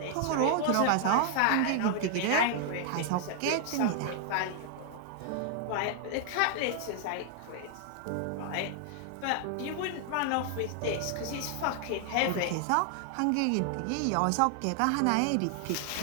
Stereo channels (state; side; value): different; both; correlation 0.00